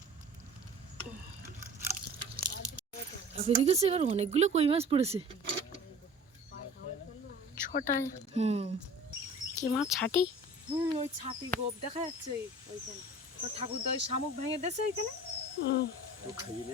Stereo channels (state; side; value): normal; both; correlation 0.43